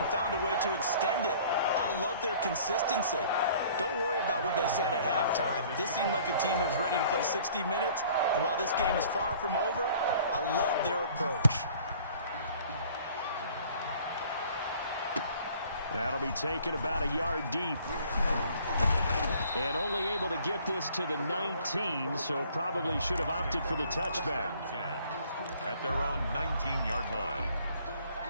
found a way to extend it. I love their consistency. Don't worry about what they said at halftime. This seemed like a team that was ready to play 60 minutes, and while this game is far from over, I love their approach. That'll be taken about a yard deep. And only able to get this to the 19, so probably should have opted for the touchback. At their own 19-yard line.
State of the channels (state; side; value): inverted; both; correlation -0.54